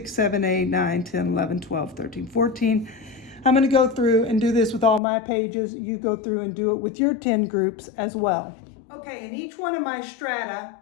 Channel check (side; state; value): right; drops out; at 5.0 s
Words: 7, 8, 9, 10, 11, 12, 13, 14. I'm going to go through and do this with all my pages. You go through and do it with your 10 groups as well. Okay, in each one of my strata,